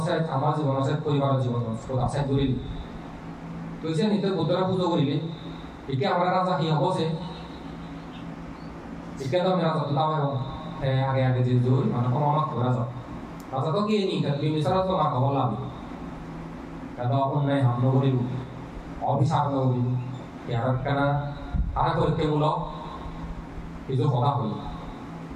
আমার জীবন আছে পরিবারের জীবন আছে জড়িল তুই যে নিতে বুদ্ধরা পুজো করিলি একে আমরা রাজা কি হবো সে একে তো আমি রাজা তো দাও আগে আগে যে জোর মানে কোনো আমার রাজা রাজা তো কি নি বিমিসারা তো না খবর লাভ কারণ অন্যায় হামলা করিব অভিশাপ করিব ইয়ার কেনা আরা পরীক্ষামূলক কিছু কথা হই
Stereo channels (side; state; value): both; identical; correlation 1.00